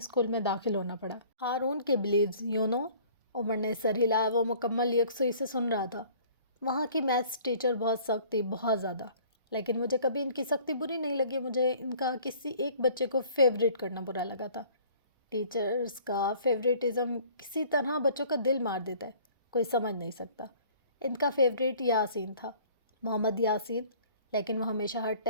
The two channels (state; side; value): inverted; both; correlation -0.52